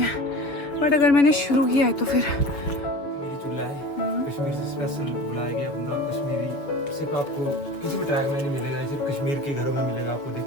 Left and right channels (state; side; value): late; right; 7.2 ms